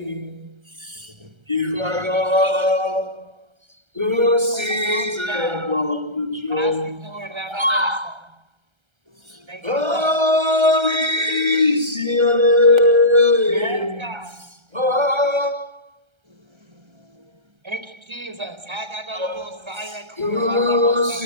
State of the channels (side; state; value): left; late; 1.3 ms